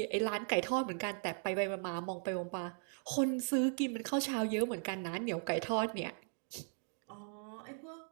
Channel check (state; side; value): silent; left; 52 dB below the other